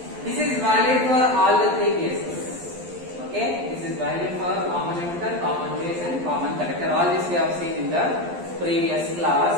This is valid for all the three cases. Okay, this is valid for common emitter, common base, and common collector. All this we have seen in the previous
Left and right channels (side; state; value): left; late; 12 ms